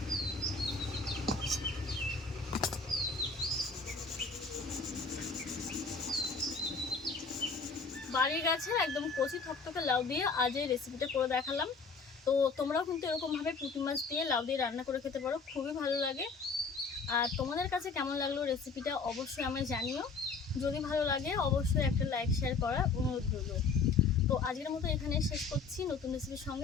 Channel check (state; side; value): quieter; right; 4.6 dB